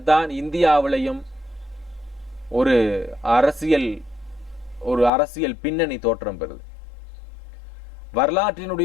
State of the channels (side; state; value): right; drops out; at 5.1 s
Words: இந்தியாவிலையும் ஒரு அரசியல் பின்னணி தோற்றம் பெறுது.